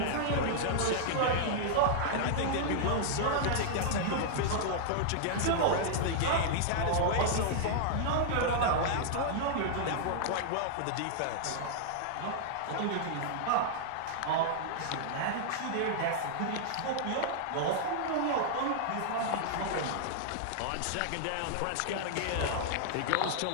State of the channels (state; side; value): different; both; correlation -0.01